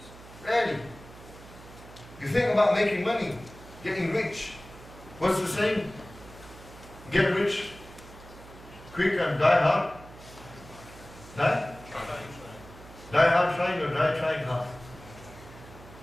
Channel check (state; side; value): noise; right; hum, 18 dB below the sound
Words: Rarely. You think about making money, getting rich. What's the saying? Get rich quick and die hard. Die? Die hard trying or die trying hard?